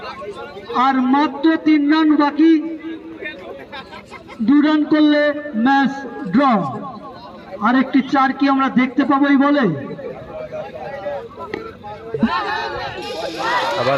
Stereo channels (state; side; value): identical; both; correlation 1.00